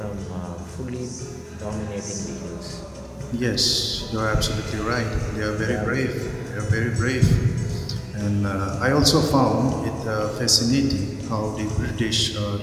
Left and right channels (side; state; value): both; identical; correlation 1.00